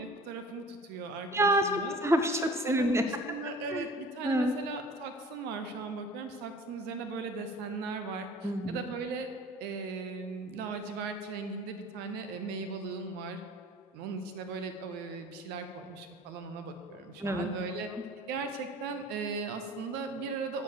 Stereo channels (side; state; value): both; normal; correlation 0.45